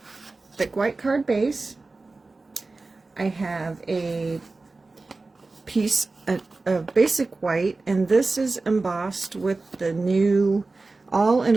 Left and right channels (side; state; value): left; quieter; 3.6 dB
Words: thick white card base. I have a piece of basic white, and this is embossed with the new all in